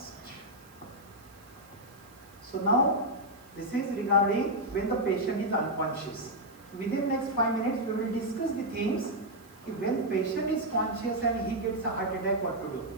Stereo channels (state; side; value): noise; right; hiss, 27 dB below the sound